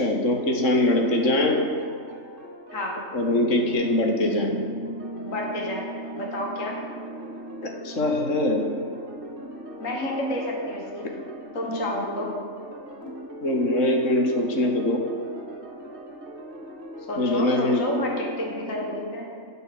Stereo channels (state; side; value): late; right; 3.3 ms